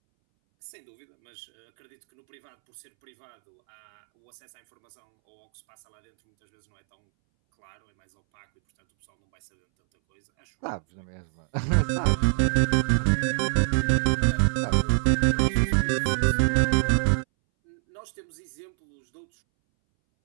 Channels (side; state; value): left; silent; 61 dB below the other